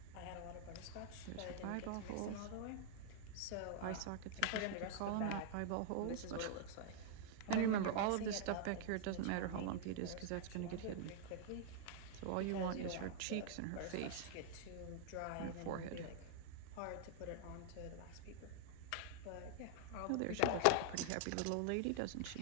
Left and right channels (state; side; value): different; both; correlation -0.01